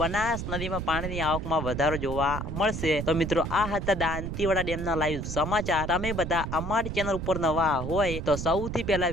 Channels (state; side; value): noise; right; rumble, 5 dB below the sound